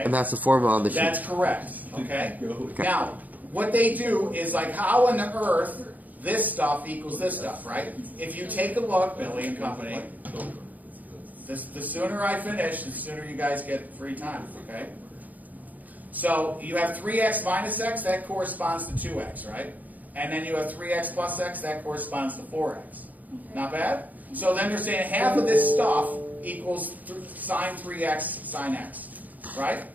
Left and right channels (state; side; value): late; left; 0.080 ms